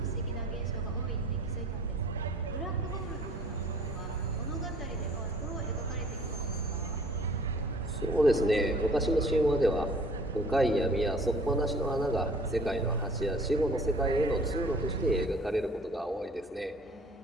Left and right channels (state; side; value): normal; both; correlation 0.52